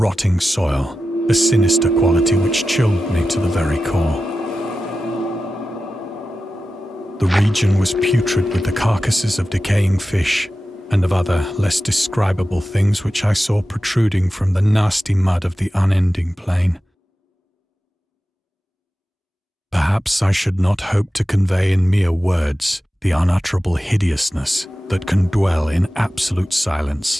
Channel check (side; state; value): both; normal; correlation 0.93